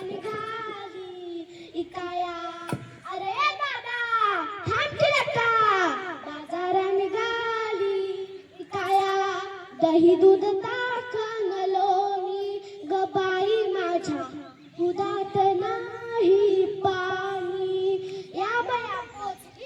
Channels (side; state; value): both; identical; correlation 1.00